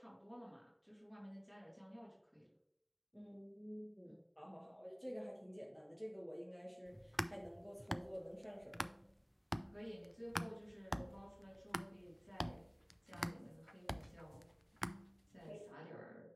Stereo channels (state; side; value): identical; both; correlation 1.00